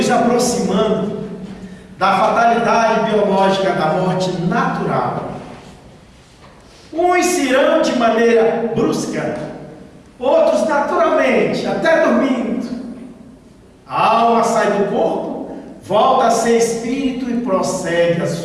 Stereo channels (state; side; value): identical; both; correlation 1.00